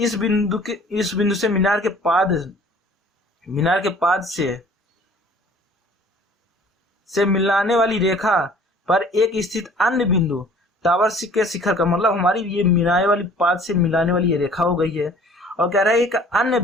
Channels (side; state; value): both; normal; correlation 0.51